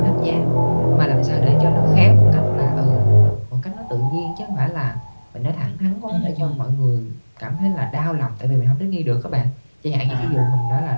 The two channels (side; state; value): both; inverted; correlation -1.00